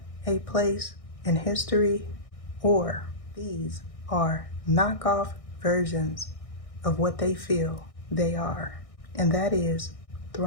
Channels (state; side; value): late; right; 1.6 ms